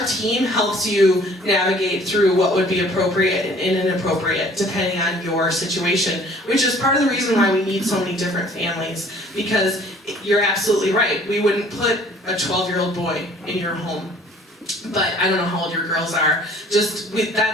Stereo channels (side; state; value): both; normal; correlation 0.54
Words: team helps you navigate through what would be appropriate and inappropriate depending on your situation, which is part of the reason why we need so many different families, because you're absolutely right. We wouldn't put a 12-year-old boy in your home. But I don't know how old your girls are.